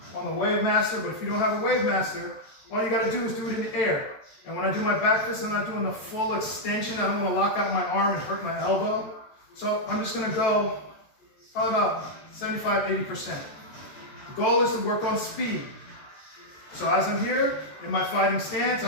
on the Wave Master, but if you don't have a Wave Master, all you got to do is do it in the air. And when I do my back fist, I'm not doing the full extension. I don't want to lock out my arm and hurt my elbow. So I'm just going to go probably about 75–80%. The goal is to work on speed. So as I'm here in my fighting stance,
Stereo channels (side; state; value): right; late; 14 ms